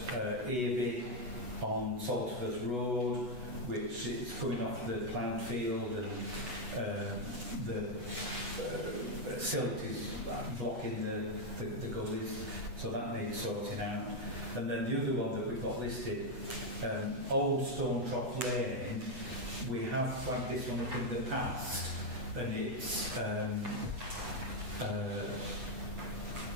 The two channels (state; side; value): late; left; 8.1 ms